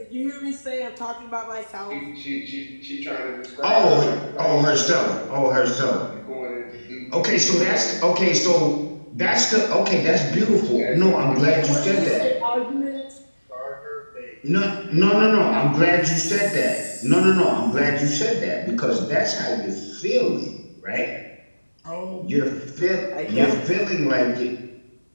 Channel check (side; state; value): both; inverted; correlation -1.00